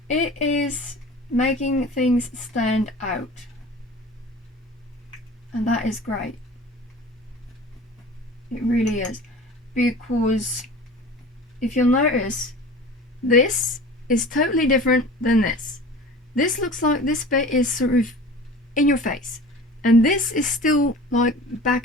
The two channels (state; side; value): normal; both; correlation 0.40